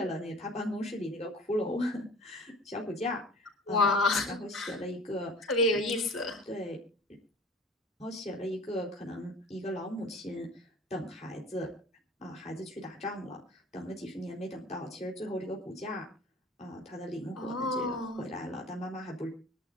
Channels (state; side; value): normal; both; correlation 0.43